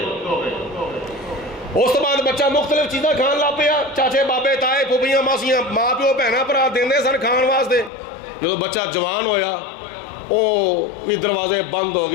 اس تو بعد بچہ مختلف چیزاں کھان لا پیا. چاچے بابے تائے پھوپھیاں ماسیاں ماں پیو بہنا بھرا دیندے سن کھان واسطے. جب بچہ جوان ہویا وہ بھی دروازے بند ہو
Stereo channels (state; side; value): drops out; right; at 7.9 s